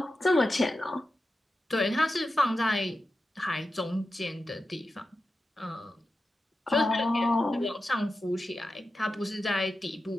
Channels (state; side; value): normal; both; correlation 0.91